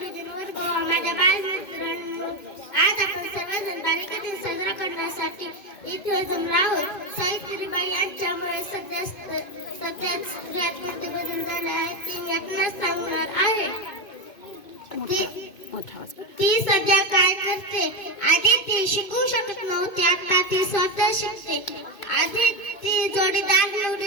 गोवा माझ्या बालमित्रांनो, आज आपण सर्वजण बालिका दिन साजरा करण्यासाठी इथे जमलो आहोत. सावित्रीबाई यांच्यामुळे सध्याच स्त्रियात कोणते बदल झाले आहेत ते मी आपणास सांगणार आहे. ती सध्या काय करते? आधी ती शिकू शकत नव्हती, आता ती स्वतः शिकते. आधी ती जोडीदार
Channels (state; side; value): late; right; 2.1 ms